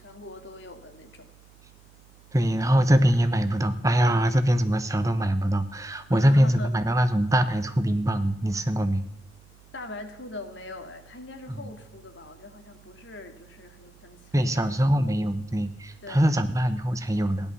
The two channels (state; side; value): noise; right; hum, 28 dB below the sound